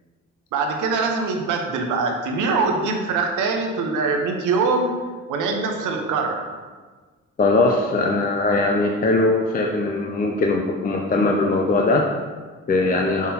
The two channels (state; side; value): normal; both; correlation 0.23